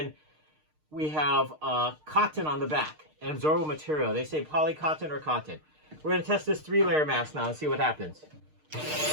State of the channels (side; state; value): left; late; 6.5 ms